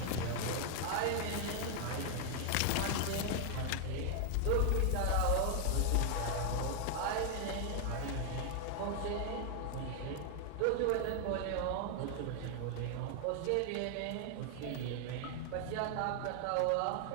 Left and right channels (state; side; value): different; both; correlation 0.00